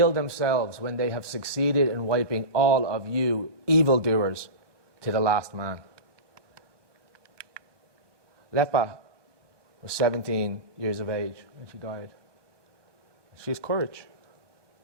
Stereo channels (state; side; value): late; left; 1.2 ms